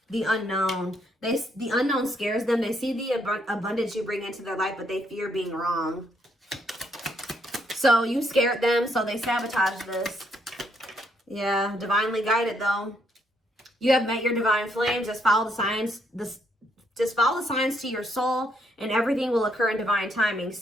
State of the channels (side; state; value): both; normal; correlation 0.73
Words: The unknown. The unknown scares them. They see the abundance you bring into their life, but they fear being wrong. So you scared them, so they sabotage this. Yeah, divinely guided though. You have met your divine flame. Just follow the signs. Just follow the signs to your soul, and everything will occur in divine timing.